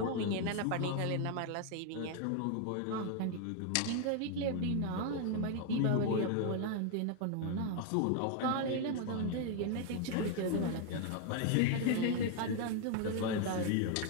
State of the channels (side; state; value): both; different; correlation 0.00